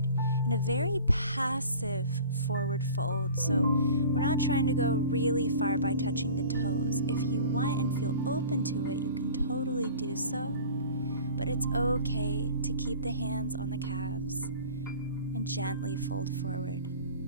in a very passive forward fold. So we're not trying to go really far by touching the toes. If you want and feel open to it, you can totally do so. But it's okay to keep the hands on the calves and gently fold forward.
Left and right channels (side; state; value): both; inverted; correlation -0.42